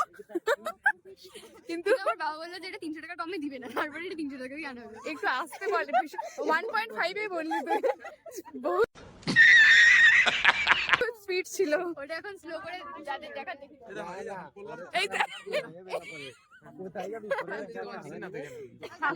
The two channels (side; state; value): both; identical; correlation 1.00